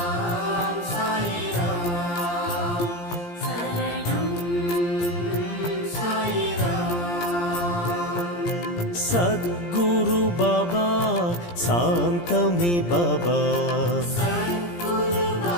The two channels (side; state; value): right; late; 17 ms